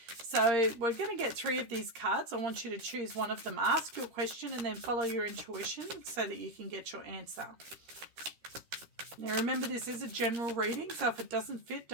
So we're going to get 3 of these cards. I want you to choose one of them. Ask your question and then follow your intuition so that you can get your answer. Now remember, this is a general reading, so if it doesn't fit,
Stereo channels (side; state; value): left; late; 13 ms